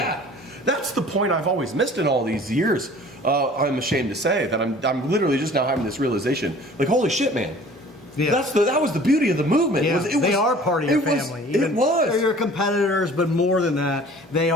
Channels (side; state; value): both; normal; correlation 0.48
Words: Yeah. That's the point I've always missed in all these years. I'm ashamed to say that I'm literally just now having this realization, like, holy shit, man. Yeah. That was the beauty of the movement. Yeah. They are part of your family. It was. They're your competitors, but more than that, they